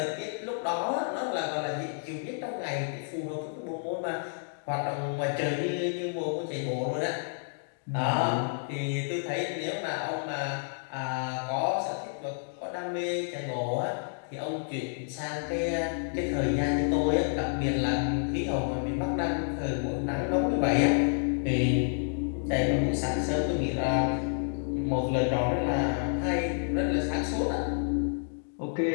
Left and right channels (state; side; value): silent; right; digital silence